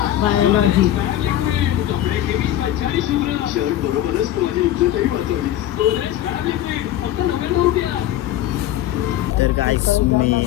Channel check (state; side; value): quieter; right; 12.6 dB